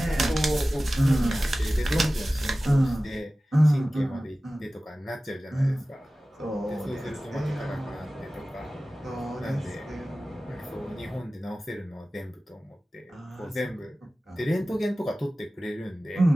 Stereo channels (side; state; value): both; normal; correlation 0.96